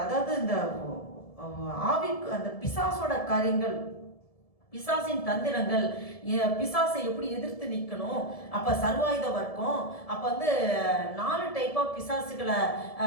அதாவது இந்த ஆவிக்கு அந்த பிசாசோட காரியங்கள், பிசாசின் தந்திரங்கள், பிசாசை எப்படி எதிர்த்து நிற்கணும், அப்போ சர்வாயுத வர்க்கம், அப்போ 4 டைப்பாக பிசாசுகளை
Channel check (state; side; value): late; right; 1.7 ms